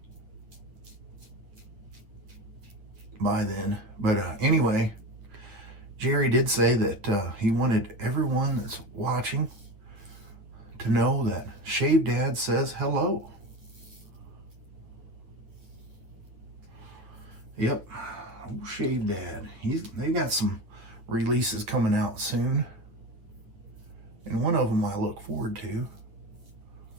by then. But anyway, Jerry did say that he wanted everyone that's watching to know that Shave Dad says hello. Yep, old Shave Dad. They got some releases coming out soon, and one of them I look forward to.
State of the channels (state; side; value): late; left; 9.0 ms